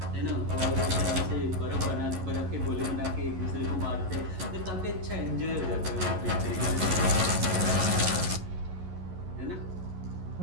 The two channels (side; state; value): left; late; 11 ms